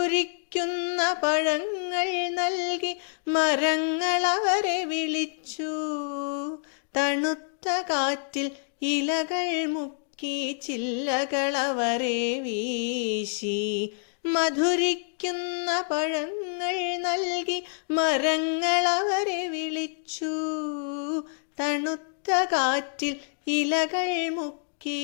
പഴങ്ങൾ നൽകി മരങ്ങൾ അവരെ വിളിച്ചു. തണുത്ത കാറ്റിൽ ഇലകൾ മുക്കി ചില്ലകൾ അവരെ വീശി. മധുരിക്കുന്ന പഴങ്ങൾ നൽകി മരങ്ങൾ അവരെ വിളിച്ചു. തണുത്ത കാറ്റിൽ ഇലകൾ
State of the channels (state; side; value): silent; right; digital silence